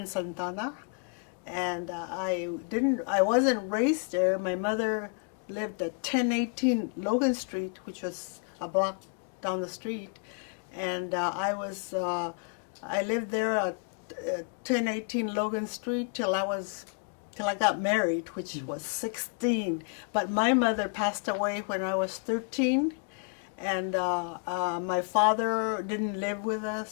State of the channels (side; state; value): right; quieter; 37.6 dB